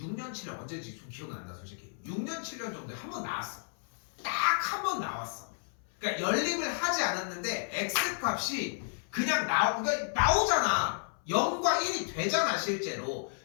7년 언제인지 좀 기억은 안 나 솔직히. 6년 7년 정도에 한 번 나왔어. 딱 한 번 나왔어. 그러니까 연립을 하지 않았는데 x값이 그냥 나오잖아. 0과 1이 되잖아 실제로.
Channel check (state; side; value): silent; right; 56 dB below the other